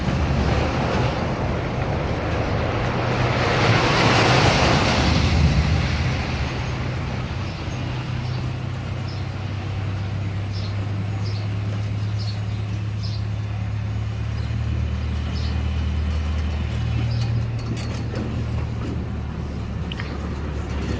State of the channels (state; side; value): identical; both; correlation 1.00